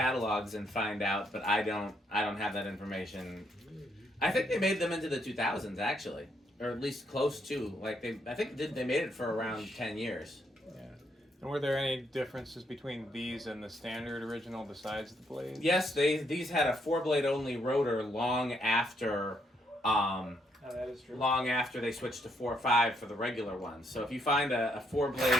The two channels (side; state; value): both; normal; correlation 0.74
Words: and find out, but I don't have that information. I think they made them into the 2000s, actually, or at least close to. I think they made it for around 10 years. Yeah. And were there any differences between these and the standard original besides the blades? Yes, these had a 4-blade only rotor long after. That is true. Long after they switched to 4.5 for the regular ones. So if you find a